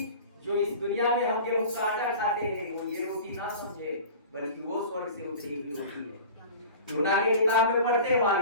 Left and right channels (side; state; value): both; inverted; correlation -0.39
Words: जो इस दुनिया में हम गेहूं का आटा खाते हैं, वो ये रोटी ना समझे, बल्कि वो स्वर्ग से उतरी हुई रोटी है। यूहन्ना की किताब में पढ़ते वहां